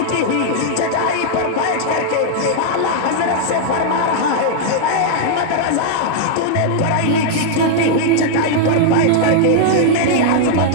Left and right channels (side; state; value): both; different; correlation -0.01